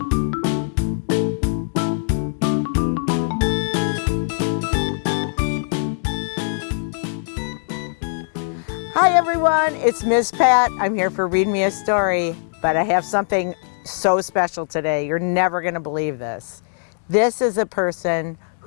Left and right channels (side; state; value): right; silent; digital silence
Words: everyone, it's Miss Pat. I'm here for Read Me a Story, but I have something so special today. You're never going to believe this. This is a person